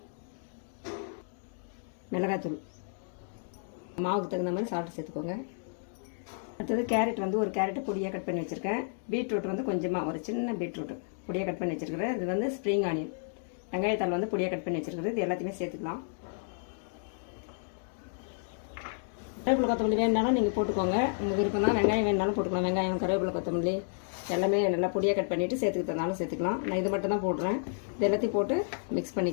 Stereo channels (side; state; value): right; silent; digital silence